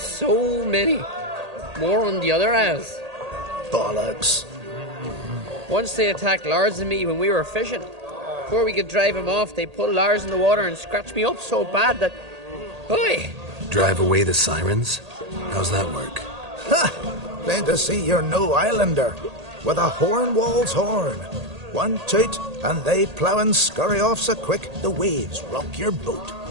many. More on the other isles. Bollocks. Once they attacked Lars and me when we were fishing. Before we could drive him off, they pulled Lars in the water and scratched me up so bad that... Oi! Drive away the sirens? How's that work? Ha! Plain to see you're no islander. With a horn wall's horn. One toot, and they plough and scurry off so quick the waves rock your boat.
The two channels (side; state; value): left; late; 1.8 ms